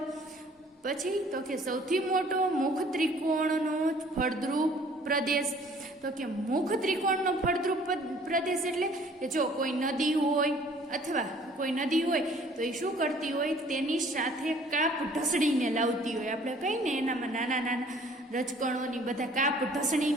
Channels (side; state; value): both; normal; correlation 0.55